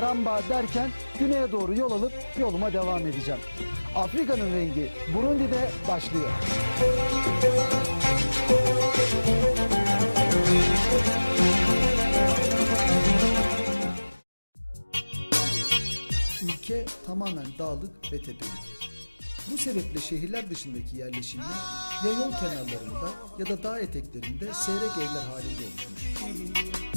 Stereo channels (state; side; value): inverted; both; correlation -1.00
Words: derken güneye doğru yol alıp yoluma devam edeceğim. Afrika'nın rengi Burundi'de başlıyor. Ülke tamamen dağlık ve tepelik. Bu sebeple şehirler dışındaki yerleşimler ya yol kenarlarında ya da dağ eteklerinde seyrek evler halinde oluşmuş.